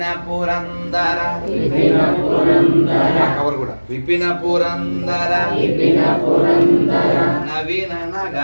పురందర కవర్ కూడా విపిన పురందర నవీన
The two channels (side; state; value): both; inverted; correlation -1.00